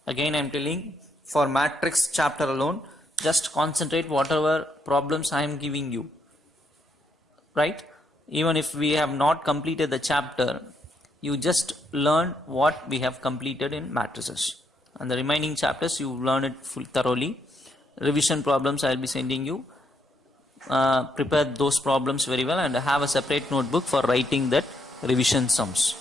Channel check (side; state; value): both; normal; correlation 0.76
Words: Again I am telling, for matrix chapter alone, just concentrate whatever problems I am giving you. Right? Even if we have not completed the chapter, you just learn what we have completed in matrices. And the remaining chapters you learn it thoroughly. Revision problems I will be sending you. Prepare those problems very well and have a separate notebook for writing that revision sums.